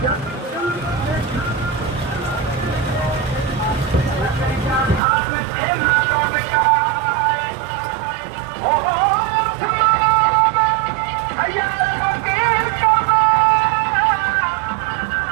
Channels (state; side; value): drops out; left; at 5.0 s